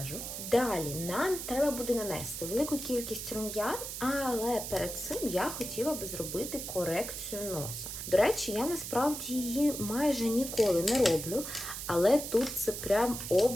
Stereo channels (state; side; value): noise; right; hiss, 7 dB below the sound